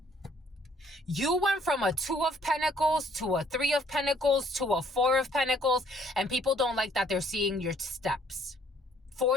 You went from a 2 of Pentacles to a 3 of Pentacles to a 4 of Pentacles, and people don't like that they're seeing your steps.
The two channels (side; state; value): both; normal; correlation 0.62